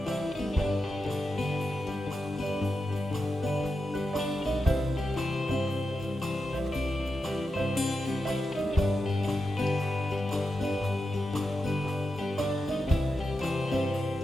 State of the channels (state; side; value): normal; both; correlation 0.88